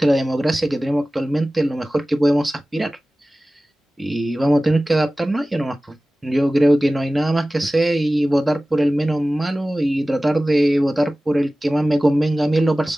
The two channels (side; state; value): both; normal; correlation 0.97